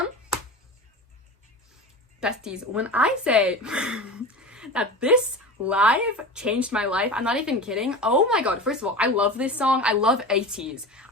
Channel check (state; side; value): normal; both; correlation 0.30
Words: Besties, when I say that this live changed my life, I'm not even kidding. Oh my god, first of all, I love this song. I love ATEEZ.